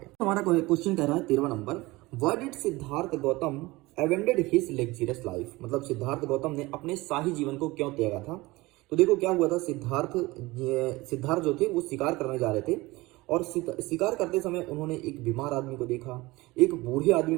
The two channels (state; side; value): quieter; left; 21.2 dB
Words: हमारा क्वेश्चन कह रहा है 13 number, why did Siddhartha Gautam abandon his luxurious life. मतलब सिद्धार्थ गौतम ने अपने शाही जीवन को क्यों त्यागा था। तो देखो क्या हुआ था, सिद्धार्थ जो थे वो शिकार करने जा रहे थे और शिकार करते समय उन्होंने एक बीमार आदमी को देखा, एक बूढ़े आदमी